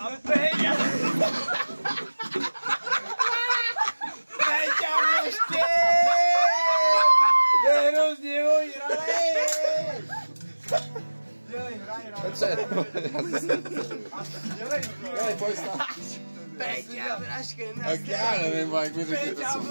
A Péťa. Péťa Vlašky. Je hrozně ožralej. Petře, dělej, pojď stát. Péťa Vlašky na Tak já nevím, jak mi řekli to, co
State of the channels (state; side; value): inverted; both; correlation -1.00